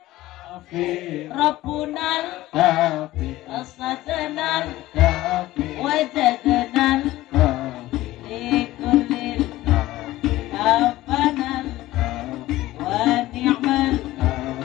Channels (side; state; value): right; quieter; 16.5 dB